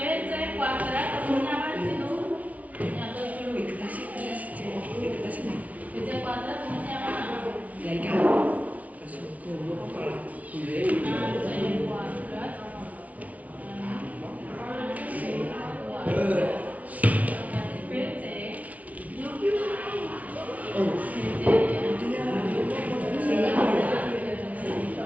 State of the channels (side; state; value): left; late; 0.069 ms